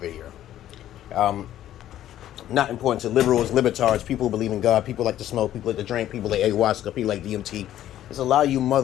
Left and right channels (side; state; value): right; quieter; 12.3 dB